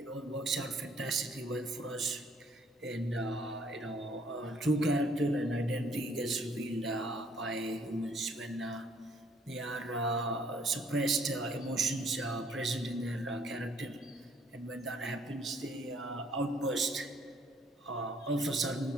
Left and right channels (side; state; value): both; normal; correlation 0.62